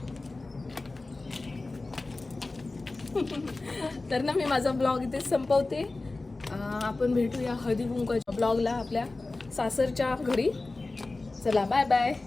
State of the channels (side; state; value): right; quieter; 3.3 dB